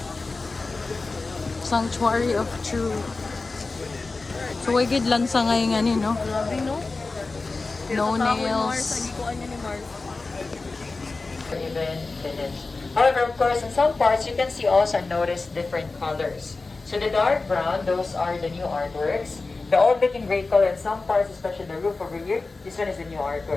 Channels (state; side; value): quieter; right; 3.7 dB